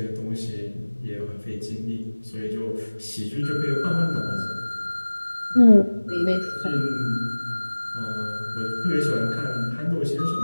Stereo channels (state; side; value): inverted; both; correlation -1.00